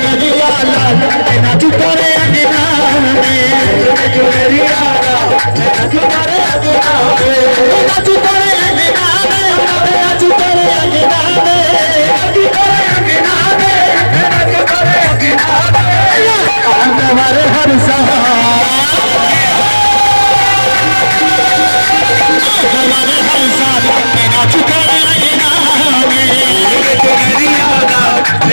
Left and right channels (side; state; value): both; inverted; correlation -1.00